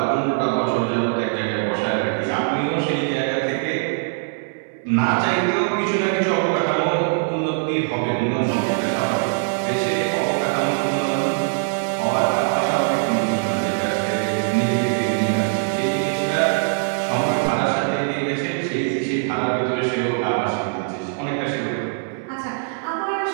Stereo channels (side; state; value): left; silent; 64 dB below the other